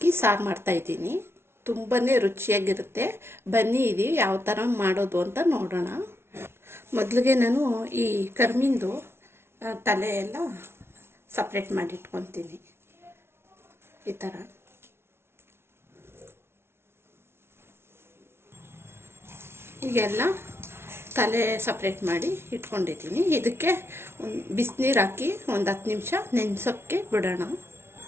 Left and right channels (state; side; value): late; left; 0.12 ms